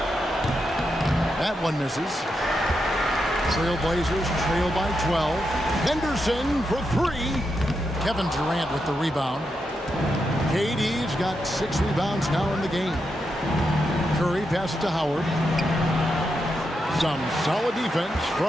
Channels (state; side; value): normal; both; correlation 0.85